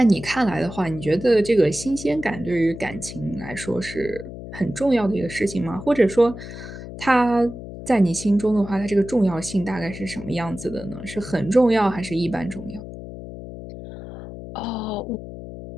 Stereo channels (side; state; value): left; noise; hum, 11 dB below the sound